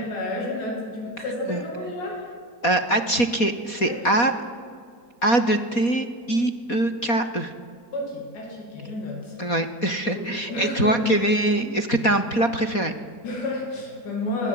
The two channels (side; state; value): right; late; 4.2 ms